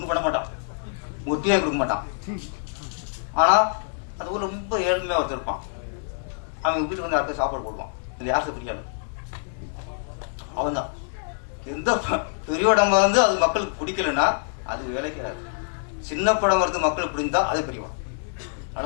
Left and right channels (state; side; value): silent; right; digital silence